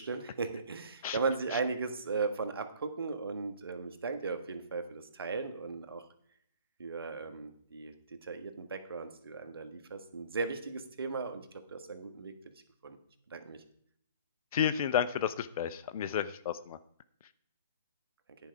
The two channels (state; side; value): inverted; both; correlation -0.47